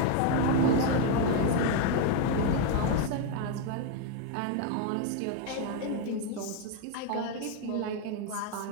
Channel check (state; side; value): different; both; correlation 0.01